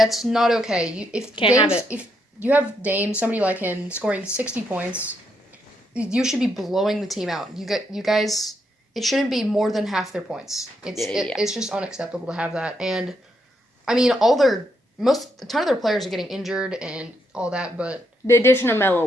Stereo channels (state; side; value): normal; both; correlation 0.77